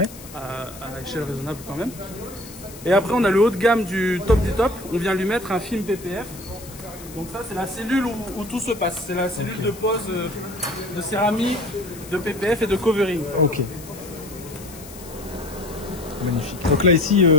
À échelle raisonnable quand même. Et après, on a le haut de gamme du top. On vient lui mettre un film PPF. Donc ça, c'est la cellule où tout se passe. C'est la cellule de pose de céramique, de PPF et de covering. Ok. Magnifique. Donc là ici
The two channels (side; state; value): left; noise; hiss, 17 dB below the sound